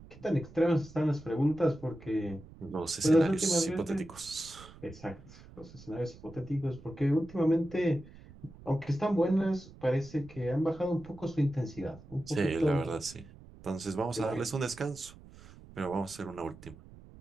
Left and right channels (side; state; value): right; noise; rumble, 19 dB below the sound